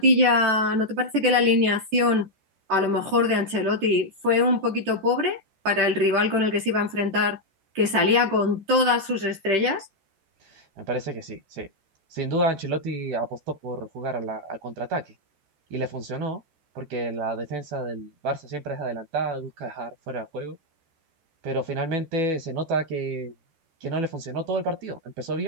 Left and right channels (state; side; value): late; left; 14 ms